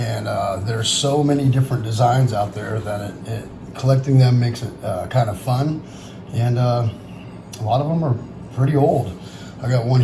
there's so many different designs out there that collecting them makes it kind of fun. And a lot of them are pretty old. I got one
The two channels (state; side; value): identical; both; correlation 1.00